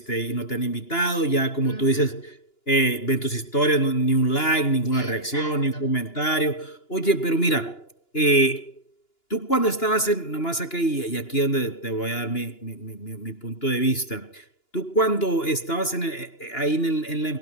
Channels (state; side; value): late; right; 2.9 ms